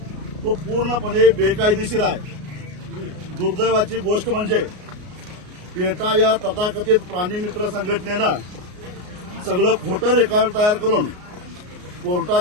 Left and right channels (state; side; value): late; left; 33 ms